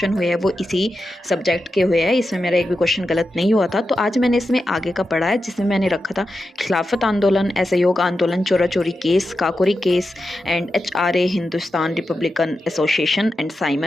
हुए हैं वो इसी सब्जेक्ट के हुए हैं, इसमें मेरा एक भी क्वेश्चन गलत नहीं हुआ था। तो आज मैंने इसमें आगे का पढ़ा है, जिसमें मैंने रखा था खिलाफत आंदोलन, असहयोग आंदोलन, चोरा चोरी case, Kakori case and HRA Hindustan Republican association and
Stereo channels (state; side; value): normal; both; correlation 0.89